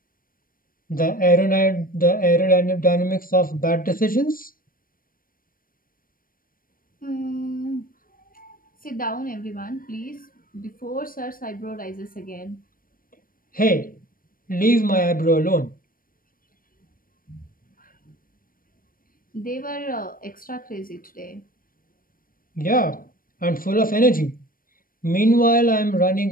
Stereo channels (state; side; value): late; right; 0.41 ms